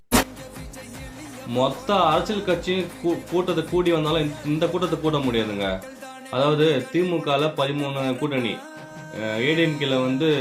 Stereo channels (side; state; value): both; identical; correlation 1.00